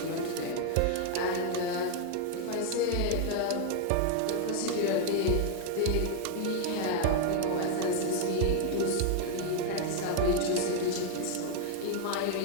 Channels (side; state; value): both; different; correlation 0.00